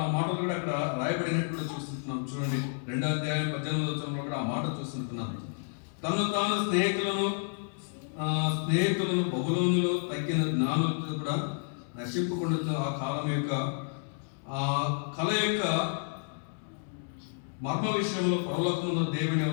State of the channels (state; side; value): silent; right; digital silence